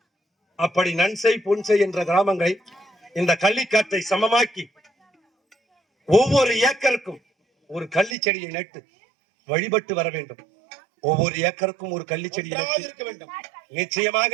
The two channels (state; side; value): drops out; left; at 8.2 s